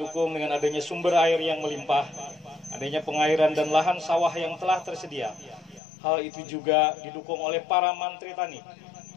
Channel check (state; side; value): drops out; right; at 5.8 s